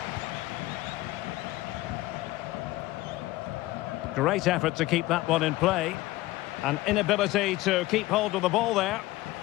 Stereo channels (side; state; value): right; quieter; 18.1 dB